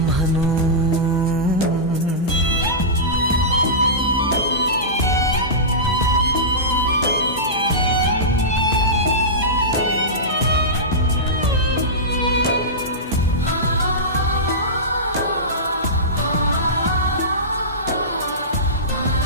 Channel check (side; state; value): both; normal; correlation -0.17